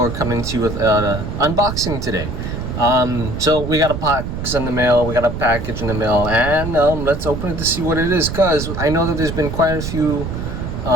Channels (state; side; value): noise; right; rumble, 5 dB below the sound